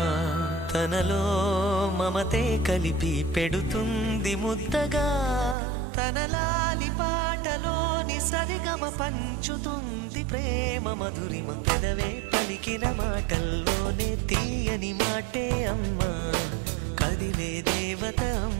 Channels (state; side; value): drops out; left; at 5.6 s